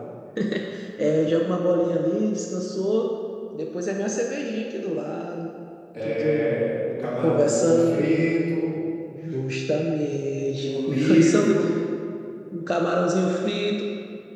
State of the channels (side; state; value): both; identical; correlation 1.00